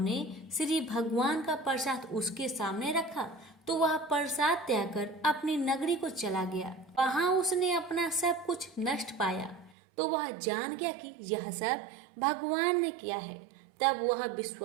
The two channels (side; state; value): left; drops out; at 9.8 s